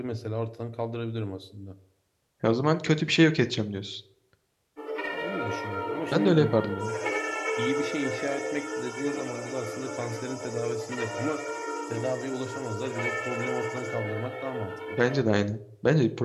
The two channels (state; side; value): identical; both; correlation 1.00